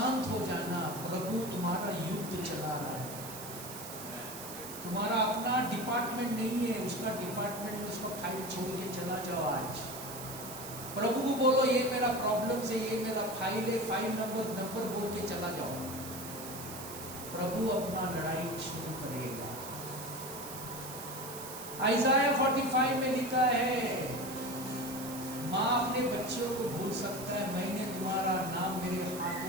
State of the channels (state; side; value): noise; right; hiss, 11 dB below the sound